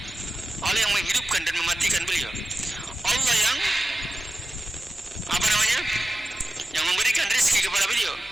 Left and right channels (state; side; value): normal; both; correlation 0.94